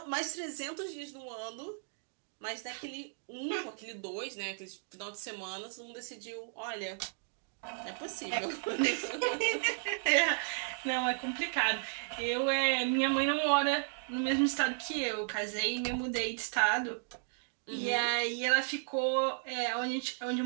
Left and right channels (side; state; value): left; silent; digital silence